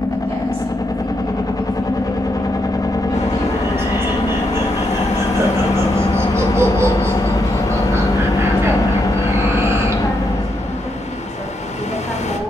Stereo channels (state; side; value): normal; both; correlation 0.80